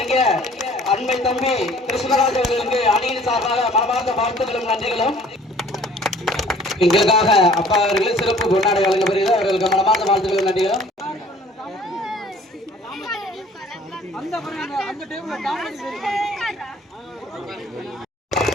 அண்மை தம்பி கிருஷ்ணராஜ் அவர்களுக்கு அணியின் சார்பாக மனமார்ந்த வாழ்த்துக்களும் நன்றிகளும். எங்களுக்காக அப்பா அவர்கள் சிறப்பு பொன்னாடை வழங்கப்படுகிறது. அவர்களுக்கு மனமார்ந்த வாழ்த்துக்களும் நன்றிகளும்.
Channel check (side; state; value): both; normal; correlation 0.53